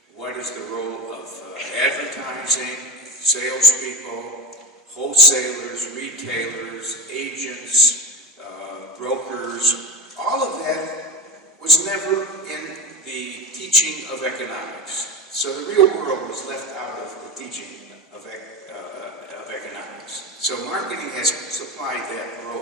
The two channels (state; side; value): normal; both; correlation 0.22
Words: What is the role of advertising, salespeople, wholesalers, retailers, agents, brokers? All of that was never in the teaching of economics. So the real world was left out of the teaching of economics. So marketing has supplied that